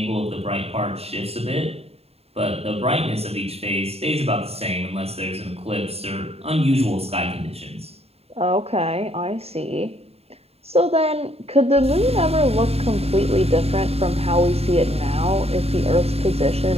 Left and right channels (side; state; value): left; late; 0.29 ms